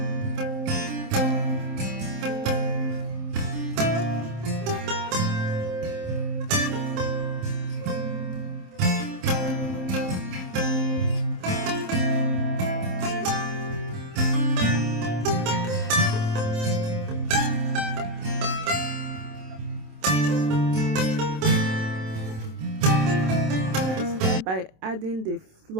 By adding the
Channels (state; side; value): late; left; 27 ms